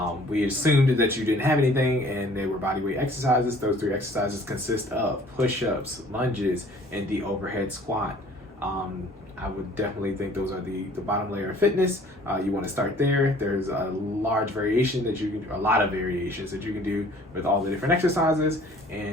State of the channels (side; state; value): both; normal; correlation 0.53